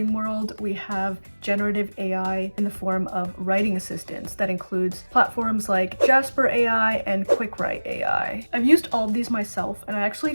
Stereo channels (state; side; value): inverted; both; correlation -1.00